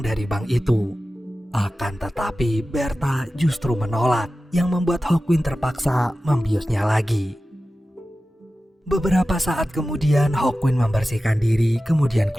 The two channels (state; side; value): normal; both; correlation 0.94